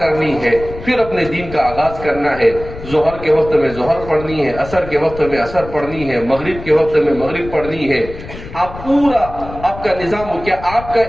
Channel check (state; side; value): noise; left; rumble, 13 dB below the sound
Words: ہے، پھر اپنے دین کا آغاز کرنا ہے۔ ظہر کے وقت میں ظہر پڑھنی ہے، عصر کے وقت میں عصر پڑھنی ہے، مغرب کے وقت میں مغرب پڑھنی ہے۔ آپ پورا آپ کا نظام ہو، کیا آپ کا